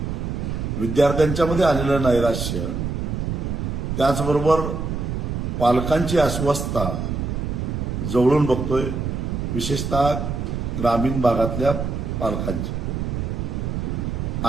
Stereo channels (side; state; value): right; noise; rumble, 2 dB below the sound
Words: विद्यार्थ्यांच्यामध्ये आलेलं नैराश्य, त्याचबरोबर पालकांची अस्वस्थता जवळून बघतोय, विशेषतः ग्रामीण भागातल्या पालकांची.